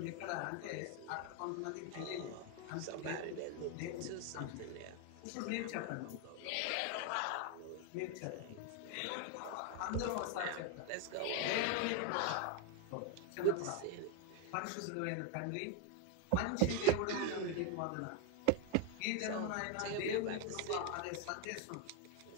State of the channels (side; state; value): both; different; correlation 0.01